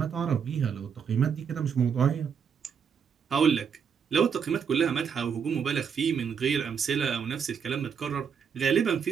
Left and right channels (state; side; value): quieter; left; 6.9 dB